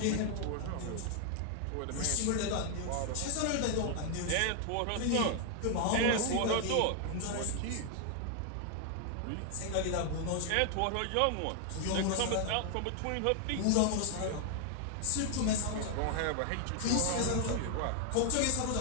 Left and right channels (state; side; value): different; both; correlation 0.00